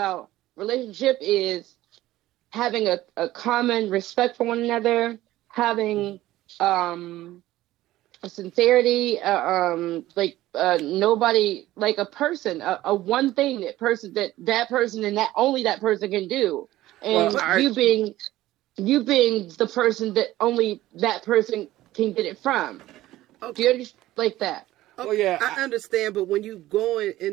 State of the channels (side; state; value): left; quieter; 15.7 dB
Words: relationship is having a common respect for one another, having a sincerity, nobody, like a person, a one thing that person and that only that person can do, and you being the person that only that person can get it from. Okay. Do you understand like that? Oh yeah, I understand, but when you going